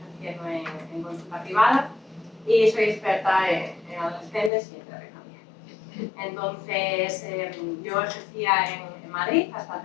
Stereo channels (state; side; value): drops out; right; at 4.5 s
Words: ejerciendo en consulta privada y soy experta en adolescentes y en terapia familiar. Entonces, yo ejercía en Madrid hasta